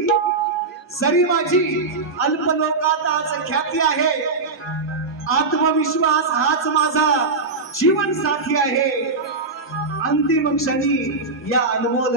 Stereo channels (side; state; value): left; quieter; 3.9 dB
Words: जरी माझी अल्पलोकात आज ख्याती आहे आत्मविश्वास हाच माझा जीवन साथी आहे अंतिम क्षणी या अनमोल